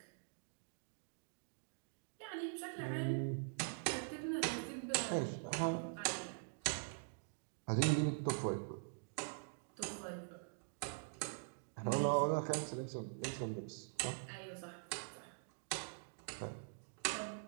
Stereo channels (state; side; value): silent; left; digital silence